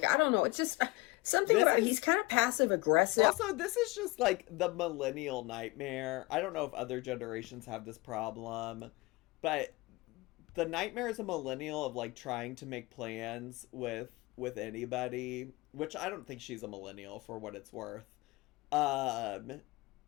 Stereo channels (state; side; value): quieter; right; 22.3 dB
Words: don't know. It's just something about, he's kind of passive aggressive. Also, this is just the millennial nightmare. I don't know if other generations have this problem, but the nightmare as a millennial of trying to make plans with with anybody, which I don't think she's a millennial for what it's worth. I